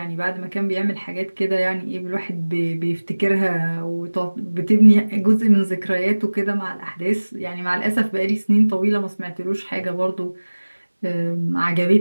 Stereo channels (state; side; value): inverted; both; correlation -1.00